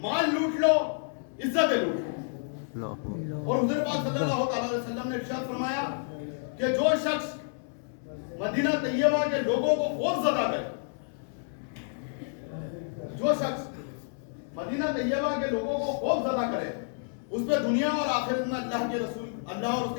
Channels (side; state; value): right; silent; digital silence